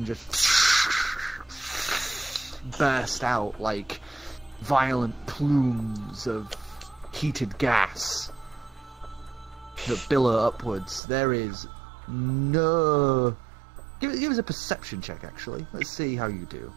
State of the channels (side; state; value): left; drops out; at 11.0 s